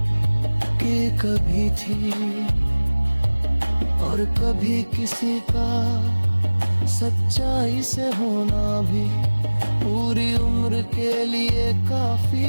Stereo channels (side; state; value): both; inverted; correlation -1.00